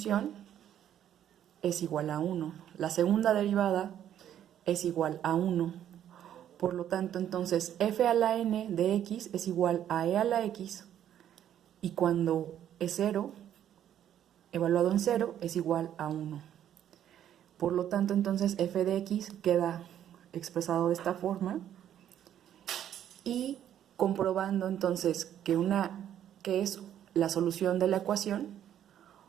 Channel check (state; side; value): quieter; left; 10.5 dB